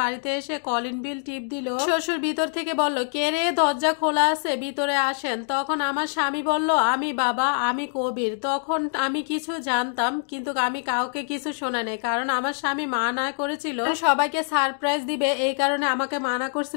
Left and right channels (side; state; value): right; silent; digital silence